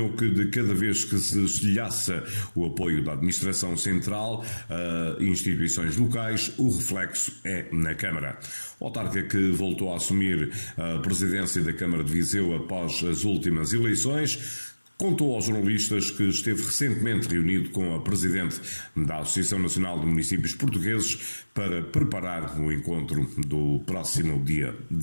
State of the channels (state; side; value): inverted; both; correlation -1.00